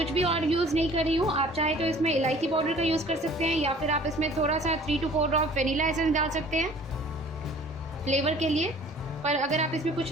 भी और यूज़ नहीं कर रही हूँ। आप चाहे तो इसमें इलायची पाउडर का यूज़ कर सकते हैं या फिर आप इसमें थोड़ा सा 3 to 4 ड्रॉप वनीला एसेंस डाल सकते हैं फ्लेवर के लिए। पर अगर आप इसमें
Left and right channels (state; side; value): normal; both; correlation 0.50